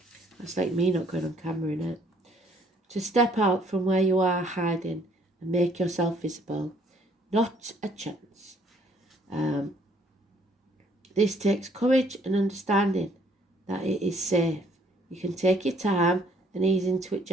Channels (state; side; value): normal; both; correlation 0.63